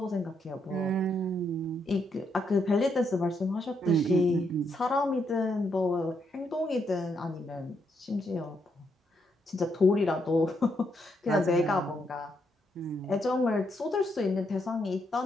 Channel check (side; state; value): both; normal; correlation 0.77